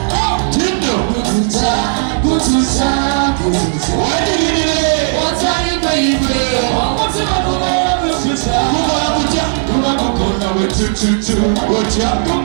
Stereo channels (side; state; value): left; silent; digital silence